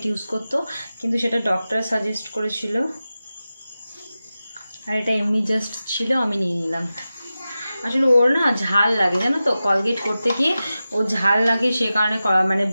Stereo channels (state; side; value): inverted; both; correlation -0.94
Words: ইউজ করতো, কিন্তু সেটা ডক্টর সাজেস্ট করেছিল, আর এটা এমনি জাস্ট ছিল, আমি নিয়ে নিলাম। আসলে ওর না ঝাল লাগে, জানো তো, কলগেট করতে গিয়ে ও ঝাল লাগে, সে কারণে মানে